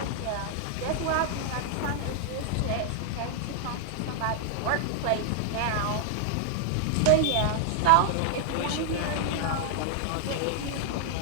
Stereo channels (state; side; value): different; both; correlation 0.00